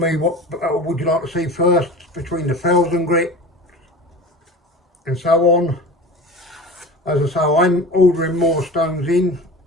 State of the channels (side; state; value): both; normal; correlation 0.35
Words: what would you like to see first between the fells and grit and so on. As I say, I'm ordering more stones in,